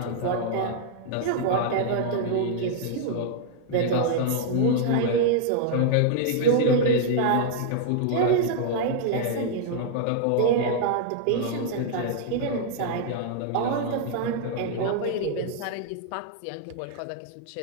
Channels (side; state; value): both; different; correlation -0.01